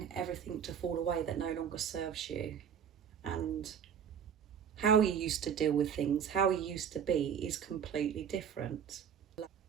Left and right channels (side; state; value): left; quieter; 7.9 dB